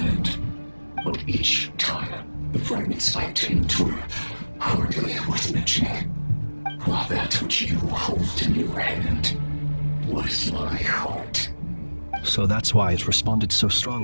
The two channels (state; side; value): inverted; both; correlation -1.00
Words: But each time, the fragments I obtained were hardly worth mentioning, while that which you hold in your hand was my heart. So that's why it responded so